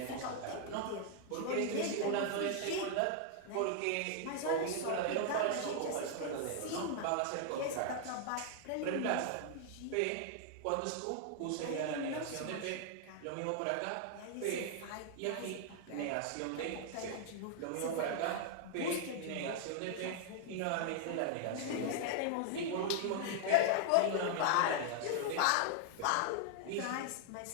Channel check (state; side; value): different; both; correlation 0.00